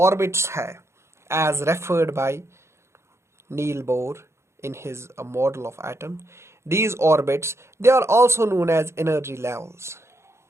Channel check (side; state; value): left; late; 0.13 ms